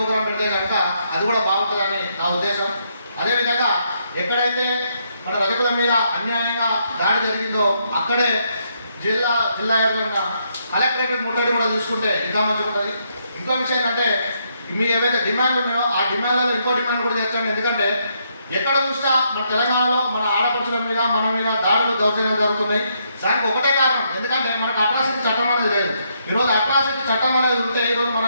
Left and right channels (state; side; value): inverted; both; correlation -0.75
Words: పెడితే కనుక అది కూడా బాగుంటుందని నా ఉద్దేశం. అదేవిధంగా ఎక్కడైతే మన రజకుల మీద అన్యాయంగా దాడి జరిగిందో అక్కడే జిల్లా వ్యాప్తంగా కలెక్టరేట్ ముట్టడి కూడా చూసుకుంటే ఇంకా మంచిగా ఉంటుంది. ఇంకో విషయం ఏంటంటే మీ ఏవైతే డిమాండ్లు ఉన్నాయో ఆ డిమాండ్లలో ఇంకో డిమాండ్ కూడా చేర్చండి. ఎందుకంటే ఎక్కడ చూసినా మన తెలంగాణలో మన ఆడపడుచుల మీద మన మీద దాడులు దౌర్జన్యాలు జరుగుతున్నాయి. దానికి ఒకటే కారణం, ఎందుకంటే మనకు అట్రాసిటీ చట్టం అనేది లేదు. ఈరోజు అట్రాసిటీ చట్టం అనేది ఉంటే ఈరోజు